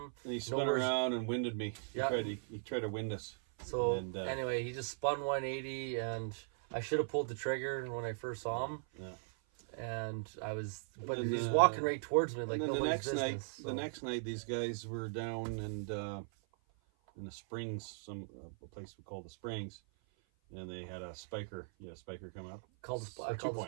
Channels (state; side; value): silent; left; 52 dB below the other